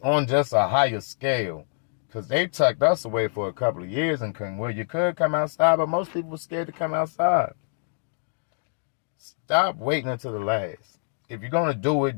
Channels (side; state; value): right; silent; digital silence